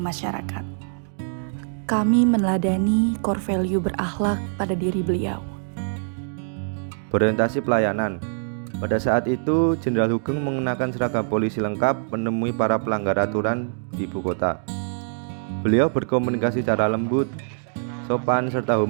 masyarakat. Kami meneladani core value berakhlak pada diri beliau. Berorientasi pelayanan. Pada saat itu, Jenderal Hugeng mengenakan seragam polisi lengkap menemui para pelanggar aturan di ibu kota. Beliau berkomunikasi secara lembut, sopan, serta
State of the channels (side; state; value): left; silent; digital silence